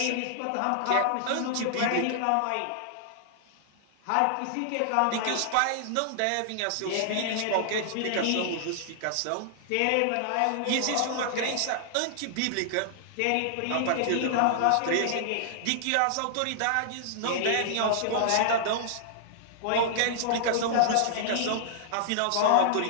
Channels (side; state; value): both; different; correlation -0.01